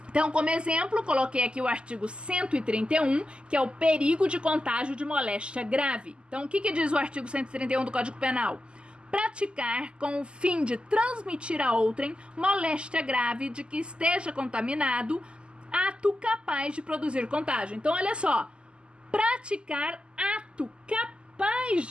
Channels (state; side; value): late; left; 0.051 ms